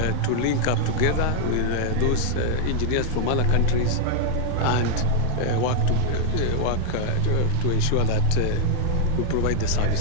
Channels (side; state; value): both; different; correlation 0.00